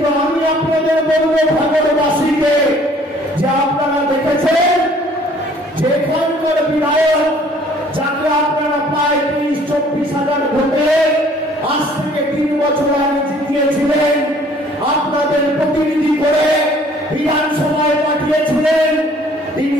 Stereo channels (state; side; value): normal; both; correlation 0.56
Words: আমি আপনাদের বলবো ভাঙড়বাসীকে যে আপনারা দেখেছেন যেখানকার বিধায়ক যাকে আপনারা প্রায় 30-24 হাজার ভোটে আজ থেকে 3 বছর আগে জিতিয়েছিলেন, আপনাদের প্রতিনিধি করে বিধানসভায় পাঠিয়েছিলেন, তিনি